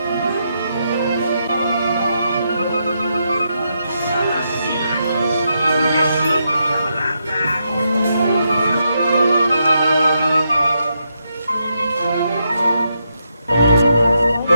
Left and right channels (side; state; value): both; inverted; correlation -0.81